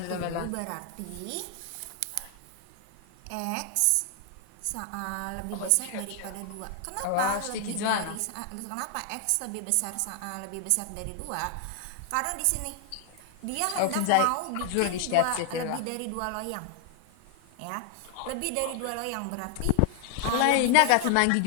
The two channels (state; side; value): different; both; correlation 0.00